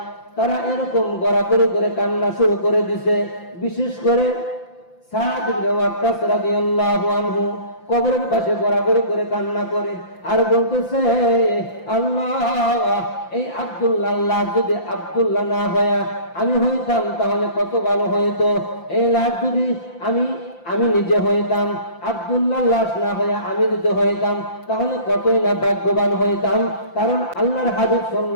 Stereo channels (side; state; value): right; late; 5.8 ms